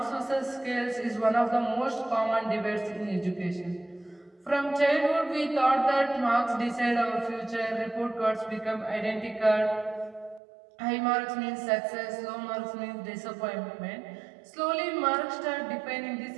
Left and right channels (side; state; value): left; drops out; at 10.4 s